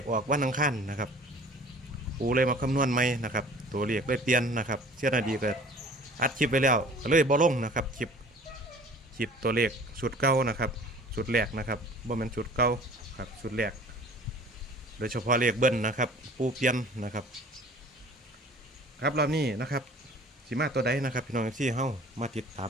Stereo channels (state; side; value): normal; both; correlation 0.48